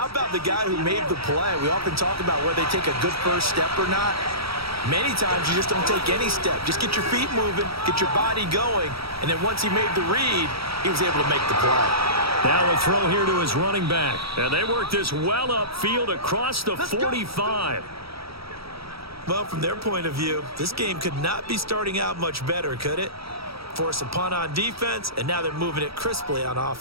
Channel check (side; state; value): left; late; 0.76 ms